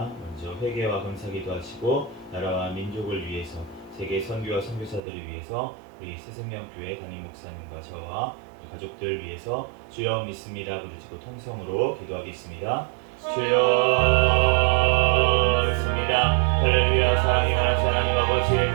먼저 회개와 감사기도 하시고 나라와 민족을 위해서 세계 선교와 선교사들을 위해서 우리 새생명교회 담임 목사님과 저와 가족들 위해서 주여 믿습니다 부르짖고 통성으로 기도하겠습니다. 주여 믿습니다. 할렐루야. 사랑이 많으신 하나님 아버지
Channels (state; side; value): drops out; left; at 5.0 s